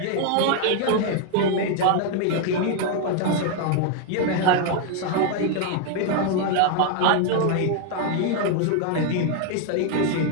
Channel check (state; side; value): different; both; correlation 0.00